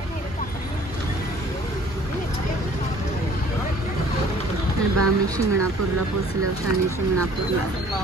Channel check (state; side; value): normal; both; correlation 0.54